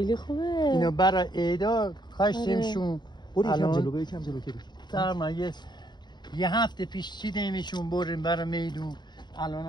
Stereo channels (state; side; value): late; right; 0.21 ms